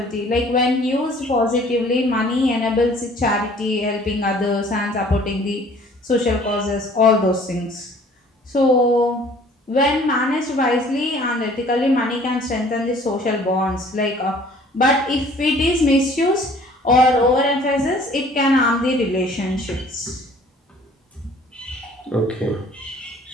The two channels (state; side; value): normal; both; correlation 0.53